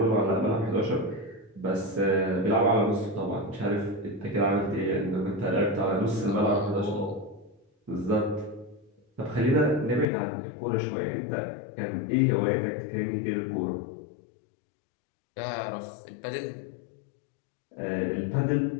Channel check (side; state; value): right; drops out; at 10.1 s